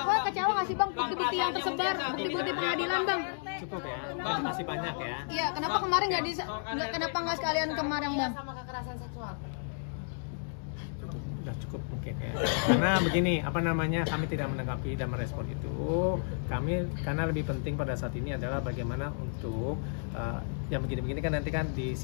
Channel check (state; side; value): silent; right; digital silence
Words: kecewa nggak sih, Bang? Bukti-bukti yang tersebar, bukti-bukti pengadilan, Bang. Cukup ya, Bang, masih banyak ya. Iya, kenapa kemarin kenapa nggak sekalian kemarin, Bang? Sama kekerasan seksual. Udah cukup mungkin ya. Karena begini, kami tidak menanggapi dan merespon itu. Karena lebih penting pada saat ini adalah bagaimana untuk yang begini-begini kan nanti kan